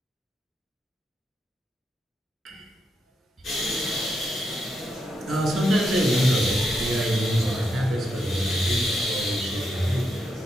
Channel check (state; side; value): normal; both; correlation 0.82